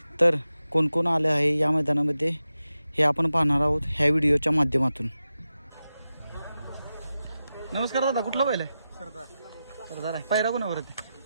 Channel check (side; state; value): both; inverted; correlation -0.92